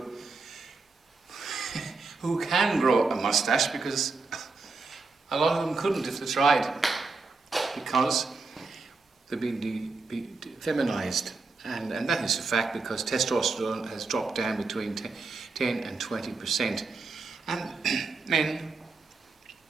can grow a mustache, because a lot of them couldn't if they tried, because they've been feminized. And that is a fact, because testosterone has dropped down between 10 and 20%. And men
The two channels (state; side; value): quieter; left; 4.1 dB